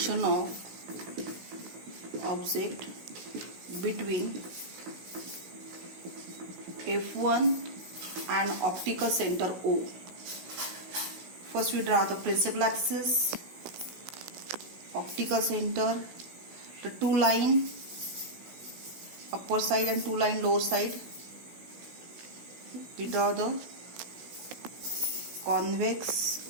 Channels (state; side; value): late; left; 16 ms